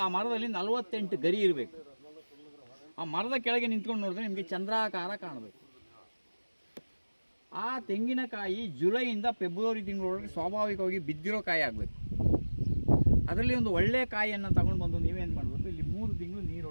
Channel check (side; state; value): both; inverted; correlation -1.00